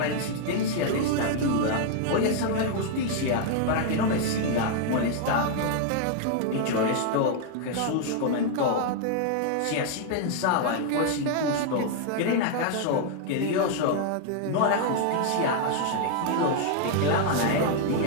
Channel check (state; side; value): different; both; correlation 0.00